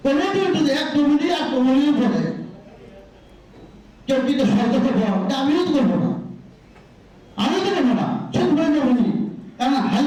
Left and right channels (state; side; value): identical; both; correlation 1.00